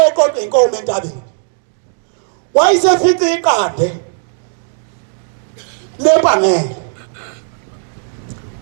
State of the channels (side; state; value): left; silent; digital silence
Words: oqoqa inkomo entabeni wayesefice iqande lebangele